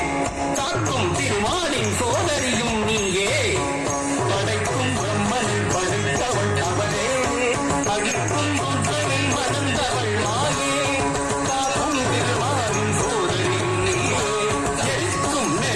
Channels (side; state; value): both; identical; correlation 1.00